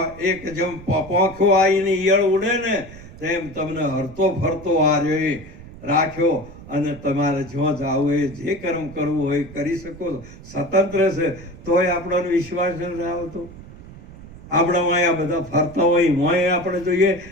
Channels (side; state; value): right; noise; rumble, 17 dB below the sound